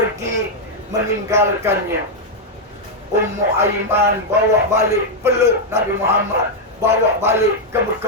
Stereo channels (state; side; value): normal; both; correlation -0.01